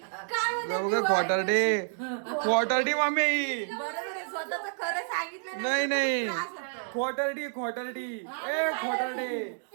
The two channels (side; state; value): left; silent; digital silence